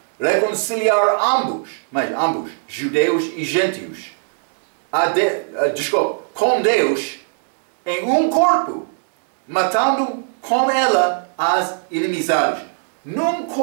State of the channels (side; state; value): left; silent; digital silence